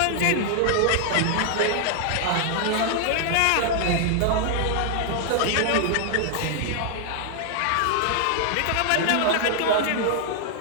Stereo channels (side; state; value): both; different; correlation 0.00